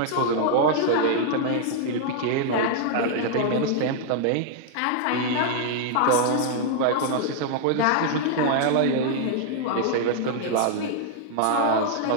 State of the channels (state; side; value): different; both; correlation -0.01